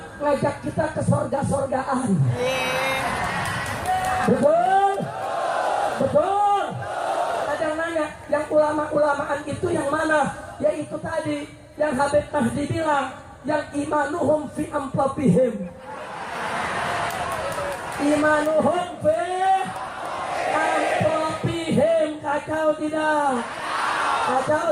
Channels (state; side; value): identical; both; correlation 1.00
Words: ngajak kita ke surga-surgaan. Betul? Betul? Ada yang nanya, yang ulama-ulamaan itu yang mana? Yaitu tadi yang Habib Mahdi bilang, yang imanuhum fi amplopihim. Imanuhum fi amplopihim. Kacau tidak? Kacau